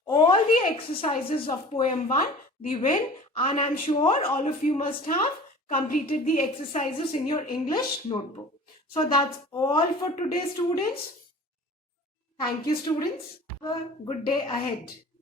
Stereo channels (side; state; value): both; normal; correlation 0.42